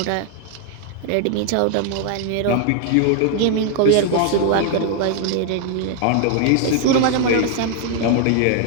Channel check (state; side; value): different; both; correlation 0.00